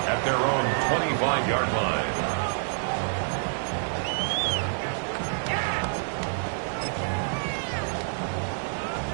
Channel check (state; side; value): silent; left; digital silence